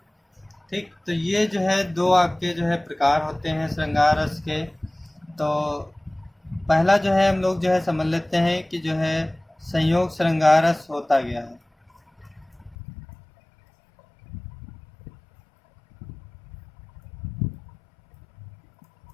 ठीक, तो ये जो है दो आपके जो है प्रकार होते हैं श्रृंगार रस के। तो पहला जो है हम लोग जो है समझ लेते हैं कि जो है संयोग श्रृंगार रस होता गया है।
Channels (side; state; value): right; drops out; at 12.8 s